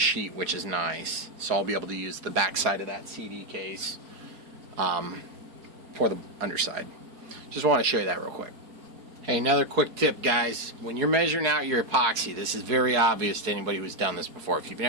which is nice. So I'll be able to use the back side of that CD case for the underside. Just want to show you that real quick. Hey, another quick tip, guys. When you're measuring out your epoxy, this is very obvious to anybody who's done this before. If you've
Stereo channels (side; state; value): left; late; 4.3 ms